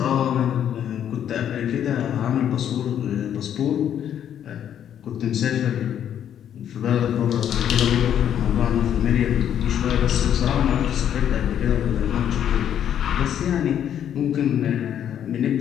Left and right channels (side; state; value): right; quieter; 9.7 dB